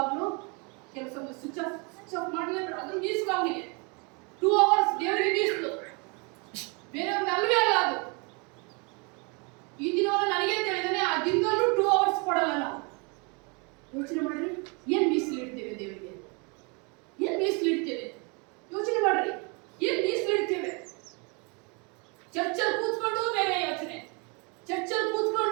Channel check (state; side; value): quieter; left; 32.2 dB